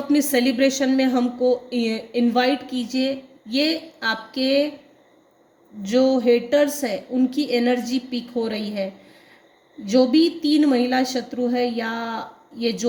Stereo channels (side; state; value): both; identical; correlation 1.00